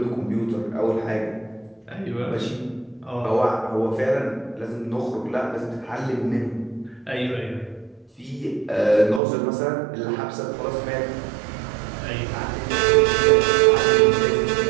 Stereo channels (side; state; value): left; drops out; at 9.2 s